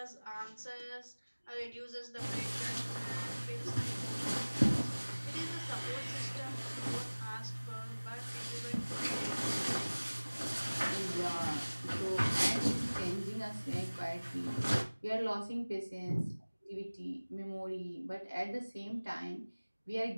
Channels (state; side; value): inverted; both; correlation -1.00